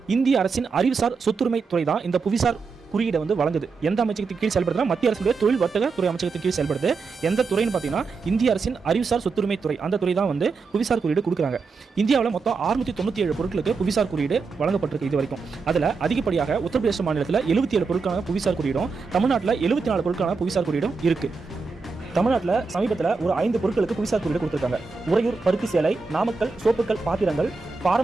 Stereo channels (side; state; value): left; quieter; 4.6 dB